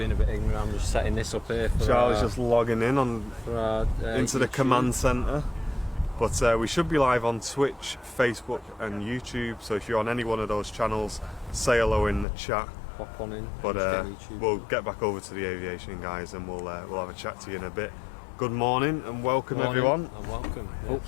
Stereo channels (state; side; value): drops out; right; at 12.2 s